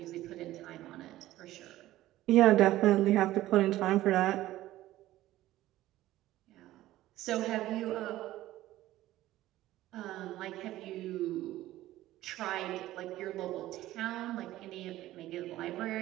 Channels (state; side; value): quieter; left; 15.3 dB